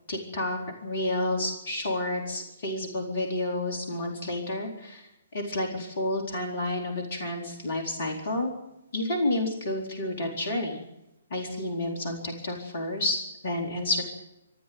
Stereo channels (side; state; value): both; inverted; correlation -0.55